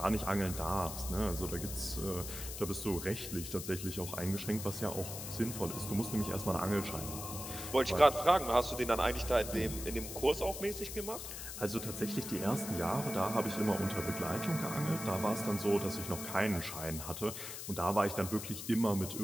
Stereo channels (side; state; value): left; noise; hiss, 8 dB below the sound